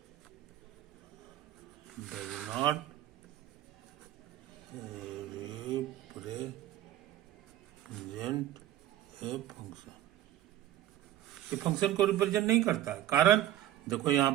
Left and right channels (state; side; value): quieter; left; 13.2 dB